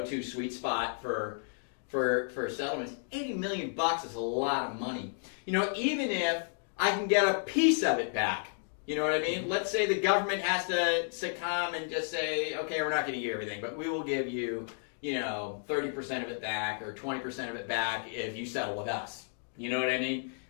sweet spot for settlements. 80 million bucks is a lot of money. You know, even if I can get a piece of it back. You know what I mean? Let's say the government has to succumb and just say, okay, we're not going to give you everything, but we will give you, you know, 30% of it back or 20% of it back if you settle with us. You know what I mean?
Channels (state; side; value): silent; right; digital silence